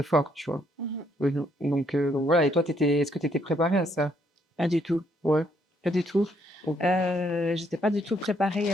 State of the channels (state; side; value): normal; both; correlation 0.70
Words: fort, tu vois? Mmh. Donc voilà. Et toi, est-ce que tu étais préparée à ça? Pas du tout, Ouais, pas du tout. OK. J'étais pas du tout préparée,